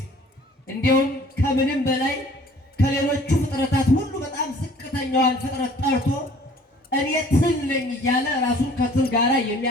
እንዲሁም ከምንም በላይ ከሌሎቹ ፍጥረታት ሁሉ በጣም ዝቅተኛዋን ፍጥረት ጠርቶ እኔ ትል ነኝ እያለ ራሱን ከትል ጋር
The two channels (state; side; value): normal; both; correlation 0.53